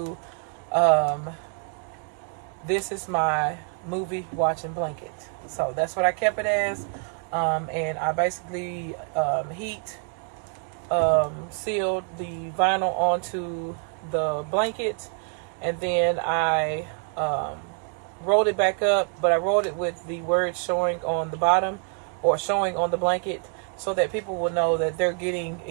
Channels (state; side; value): quieter; left; 39.5 dB